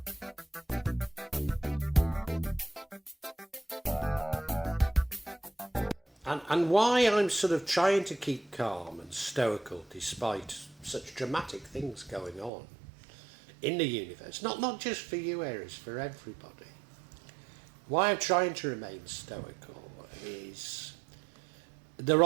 And why I'm sort of trying to keep calm and stoical despite such dramatic things going on in the universe, not just for you, Aries, for everybody. Why I'm trying to remain stoical is there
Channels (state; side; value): drops out; left; at 12.5 s